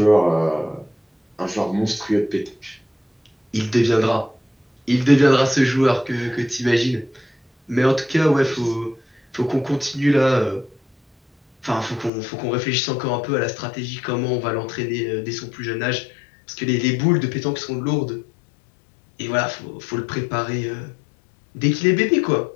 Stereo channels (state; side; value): drops out; right; at 12.1 s